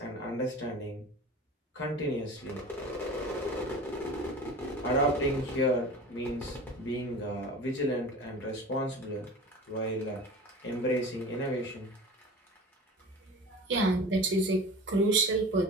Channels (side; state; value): both; normal; correlation 0.36